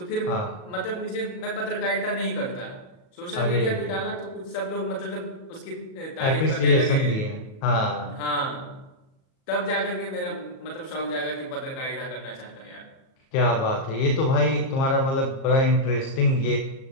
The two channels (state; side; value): late; right; 37 ms